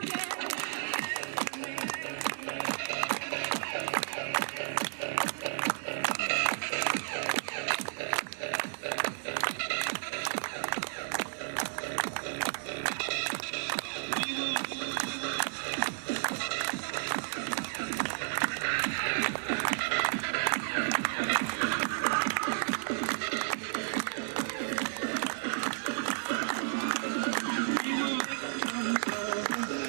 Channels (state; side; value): silent; left; digital silence